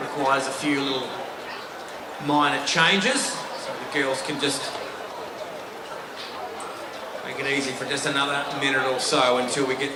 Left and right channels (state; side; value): identical; both; correlation 1.00